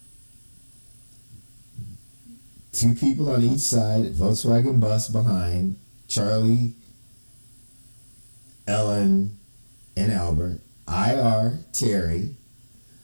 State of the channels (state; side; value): inverted; both; correlation -1.00